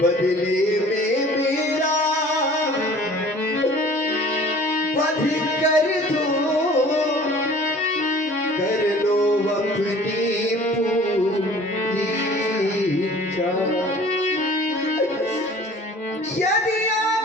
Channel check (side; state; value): both; normal; correlation 0.48